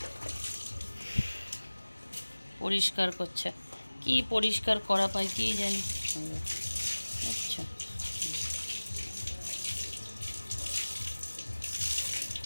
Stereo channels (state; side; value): inverted; both; correlation -1.00